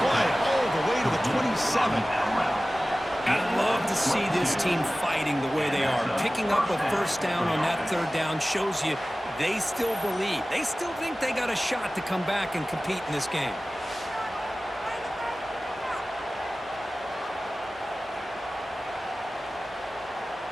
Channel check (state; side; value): normal; both; correlation 0.97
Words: play all the way to the 27. I'd love to see this team fighting the way they are. Picking up a first down on that 3rd down shows you they still believe. They still think they got a shot to come back and compete in this game.